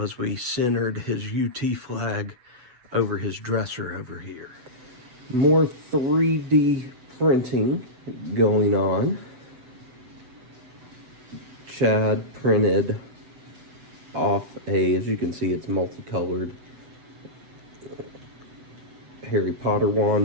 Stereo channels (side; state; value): left; late; 7.9 ms